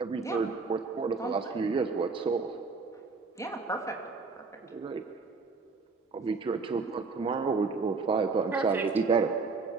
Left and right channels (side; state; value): left; quieter; 4.3 dB